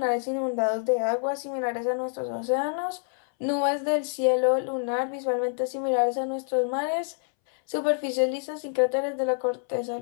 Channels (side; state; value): right; silent; 60 dB below the other